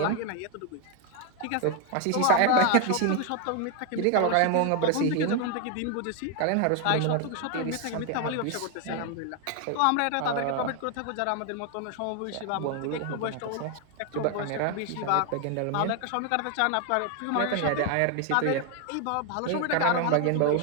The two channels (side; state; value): both; different; correlation 0.01